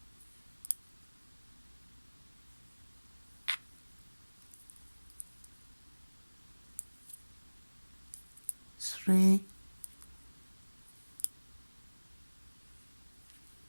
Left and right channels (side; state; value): both; inverted; correlation -1.00